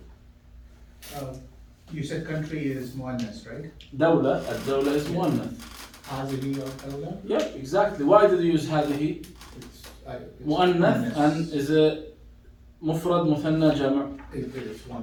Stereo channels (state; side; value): identical; both; correlation 1.00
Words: You said country is muannas, right? Dawla, ad-dawla is muannath. Hazili or dawla? Yep, exactly. Why did you use هذه? مؤنث and is a مفرد مثنى جمع. It is